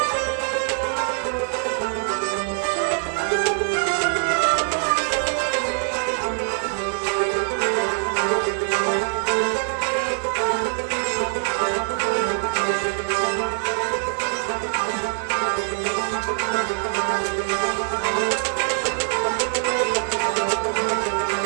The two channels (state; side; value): silent; left; digital silence